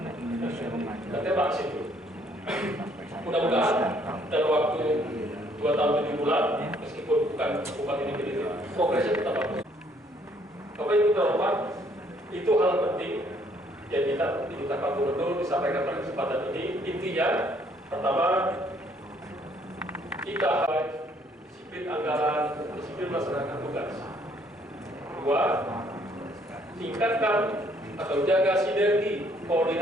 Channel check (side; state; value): both; normal; correlation 0.65